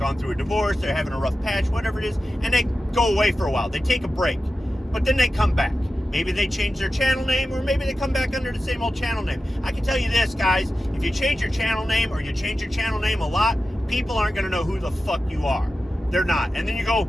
through a divorce, they're having a rough patch, whatever it is, and they go away for a while. They take a break, but then they come back. Maybe they change their channel name, or maybe they come back under the same old channel name. I can tell you this, guys, if you change your channel name or you change your channel name a lot, people aren't going to know who the fuck you are. They're not. And then you go,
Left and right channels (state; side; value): normal; both; correlation 0.93